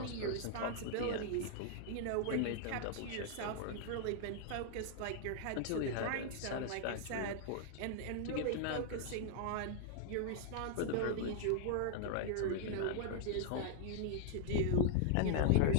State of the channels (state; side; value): different; both; correlation 0.00